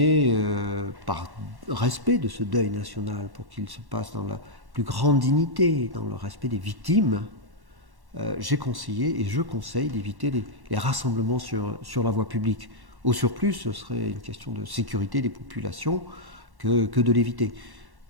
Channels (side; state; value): left; late; 1.1 ms